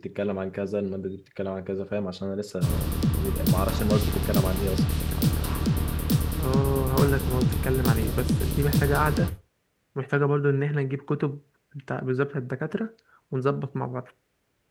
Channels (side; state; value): both; identical; correlation 1.00